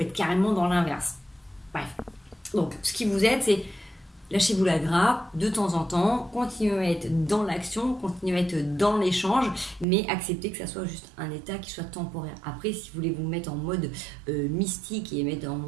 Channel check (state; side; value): drops out; left; at 9.9 s